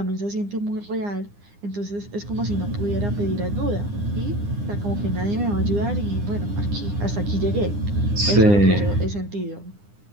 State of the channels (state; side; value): late; left; 9.8 ms